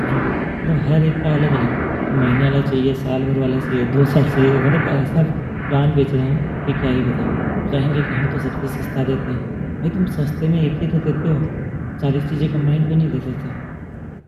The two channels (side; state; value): both; identical; correlation 1.00